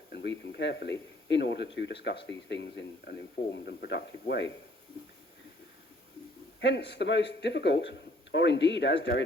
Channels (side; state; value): both; normal; correlation 0.61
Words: and read them carefully in order to discuss these things in an informed and productive way. Hence, the most difficult, or indeed, as